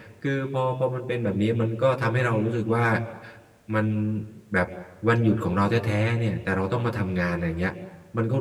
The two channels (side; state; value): both; identical; correlation 1.00